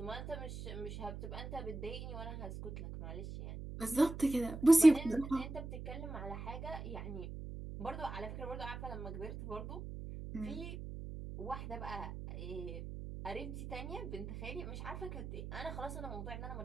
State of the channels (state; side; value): noise; right; hum, 8 dB below the sound